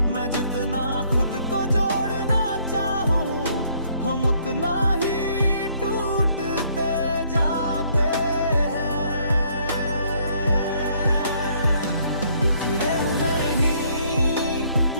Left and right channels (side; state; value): both; inverted; correlation -0.66